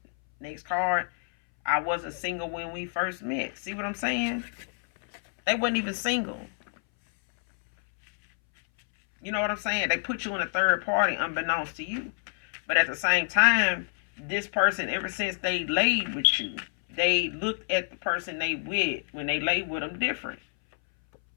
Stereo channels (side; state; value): right; silent; 60 dB below the other